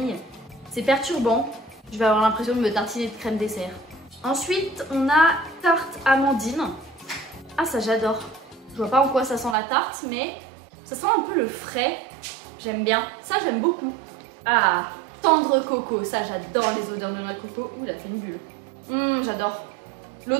C'est perturbant. Je vais avoir l'impression de me tartiner de crème dessert. Ensuite, on a tarte amandine. Ah, ça j'adore. Je vois pas en quoi ça sent la tarte, mais ça sent un peu le frais. J'aime bien. Ça, j'aime beaucoup. Ah, tendre coco. Ça, j'adore les odeurs de noix de coco. Ouh, elle a fait une bulle. J'adore.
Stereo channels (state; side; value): drops out; left; at 9.6 s